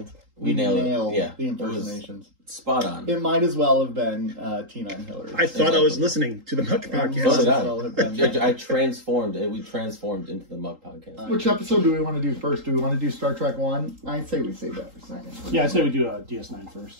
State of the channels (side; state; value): left; late; 3.8 ms